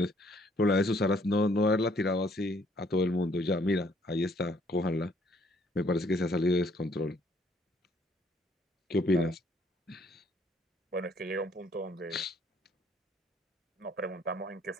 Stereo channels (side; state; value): both; normal; correlation 0.65